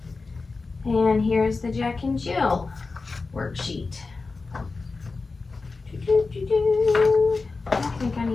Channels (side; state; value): right; quieter; 4.0 dB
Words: And here's the Jack and Jill worksheet. I think I